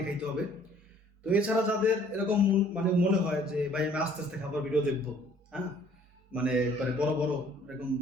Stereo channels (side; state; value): both; normal; correlation 0.58